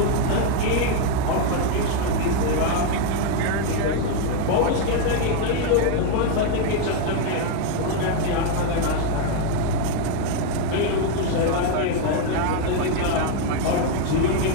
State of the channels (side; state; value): both; different; correlation 0.01